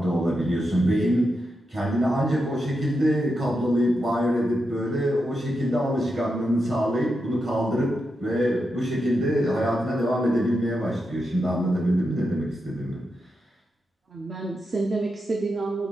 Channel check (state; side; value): normal; both; correlation 0.86